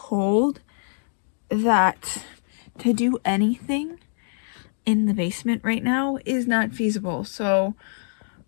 that to do anything in the basement right now is not feasible. So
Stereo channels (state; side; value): silent; right; digital silence